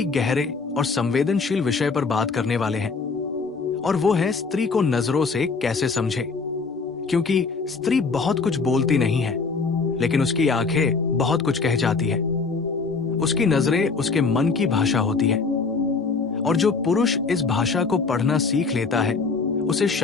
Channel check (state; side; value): quieter; right; 4.6 dB